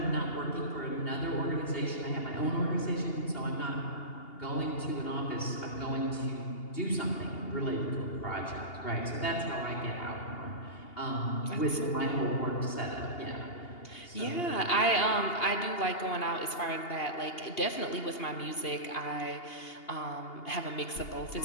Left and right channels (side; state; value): right; late; 2.8 ms